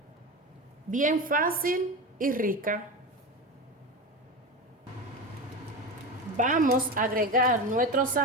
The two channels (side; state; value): both; normal; correlation 0.23